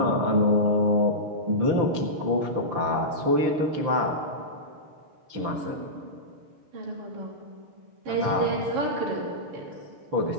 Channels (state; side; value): late; left; 6.6 ms